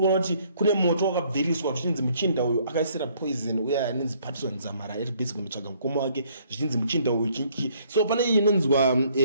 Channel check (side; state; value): both; inverted; correlation -0.64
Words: kuti kune moto wakabviriswa zvichinzi muchinda uyu akaisira poison uya anonzi Patson Zamara ari basic kunotsvaga mukoma wake zvichinzi muchinda uyu chinki. So pane inonzwa